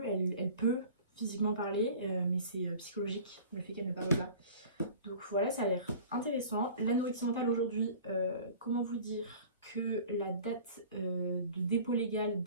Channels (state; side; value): inverted; both; correlation -0.44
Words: elle peut physiquement parler, mais c'est psychologique le fait qu'elle ne parle pas. Donc voilà, ça a l'air intéressant. L'anorexie mentale aujourd'hui, comment vous dire que la date de dépôt légal